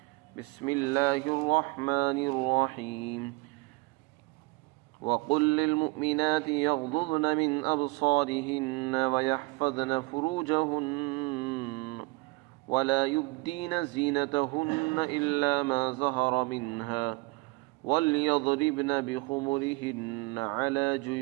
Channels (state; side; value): quieter; left; 25.3 dB